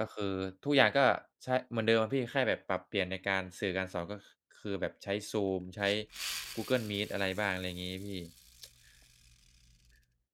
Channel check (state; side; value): identical; both; correlation 1.00